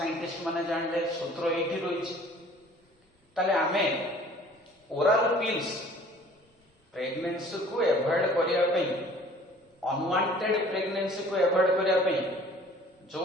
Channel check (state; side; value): normal; both; correlation 0.51